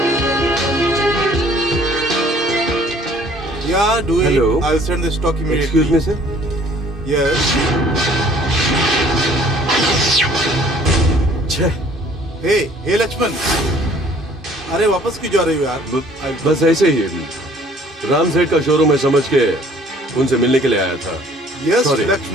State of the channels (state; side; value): normal; both; correlation 0.56